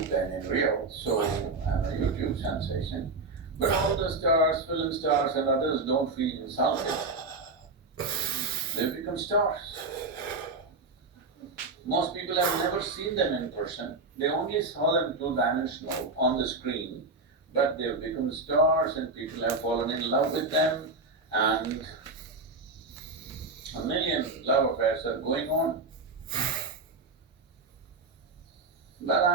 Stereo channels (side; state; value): left; quieter; 3.6 dB